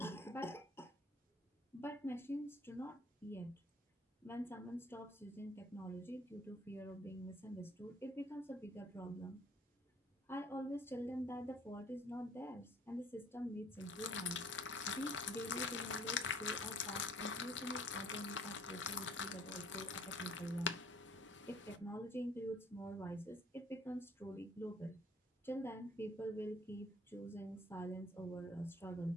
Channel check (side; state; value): both; normal; correlation 0.56